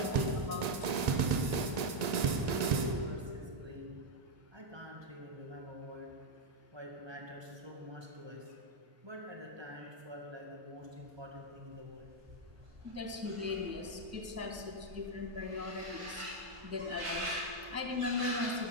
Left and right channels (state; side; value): late; left; 1.9 ms